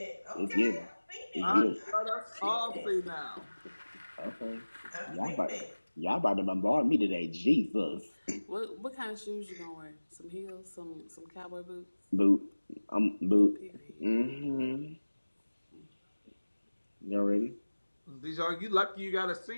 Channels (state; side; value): inverted; both; correlation -1.00